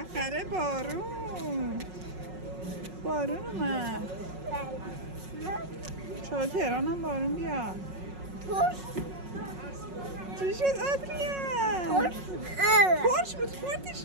بارون اومد. چرا تهران هم بارون بیاد. چی شد آدریان؟ ترش بود خوردیش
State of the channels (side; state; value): left; late; 5.4 ms